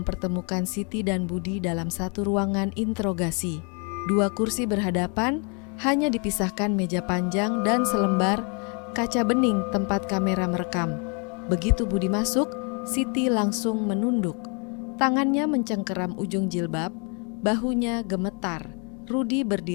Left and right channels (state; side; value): quieter; right; 36.0 dB